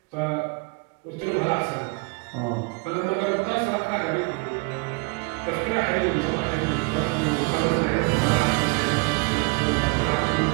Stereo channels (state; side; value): quieter; left; 30.5 dB